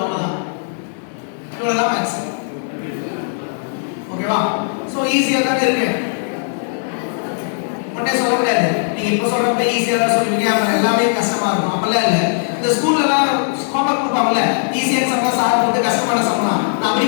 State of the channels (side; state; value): right; silent; 67 dB below the other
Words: அவ்வளவுதான், இவ்வளவுதான் மேக்ஸ். ஓகேவா? சோ ஈஸியா தான் இருக்கு, ஒண்ணே சொல்ல முடியாது. நீங்க இப்ப சொல்றப்ப ஈஸியா தான் சொல்லுவீங்க, அப்புறம் எல்லாமே கஷ்டமா இருக்கும். அப்பெல்லாம் இல்ல. இந்த ஸ்கூல்ல எல்லாம் ஹோம்வொர்க் கொடுப்பாங்கல்ல, ஈஸியான சம்மா சார் போட்டு கஷ்டமான சம்மா நான் அப்படி